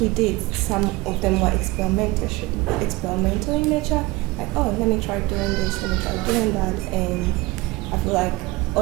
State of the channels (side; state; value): left; quieter; 21.3 dB